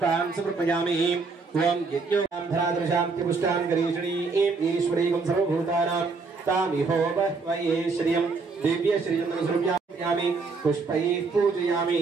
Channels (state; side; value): quieter; left; 4.3 dB